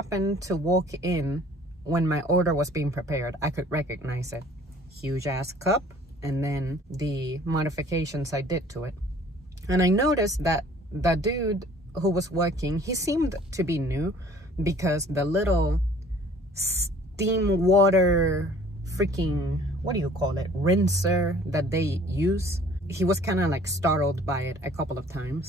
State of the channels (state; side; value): normal; both; correlation 0.53